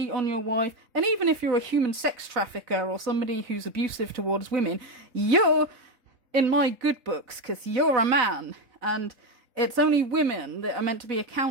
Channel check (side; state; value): left; late; 4.1 ms